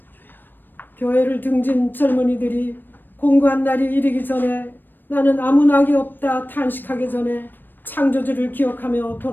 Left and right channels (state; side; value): late; right; 0.093 ms